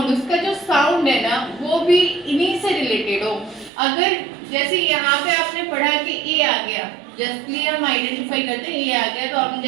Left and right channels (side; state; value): left; drops out; at 3.7 s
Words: उसका जो साउंड है ना वो भी इन्हीं से रिलेटेड हो। अगर जैसे यहाँ पे आपने पढ़ा कि ए आ गया, जस्टली हम आइडेंटिफाई करते हैं ए आ गया तो हम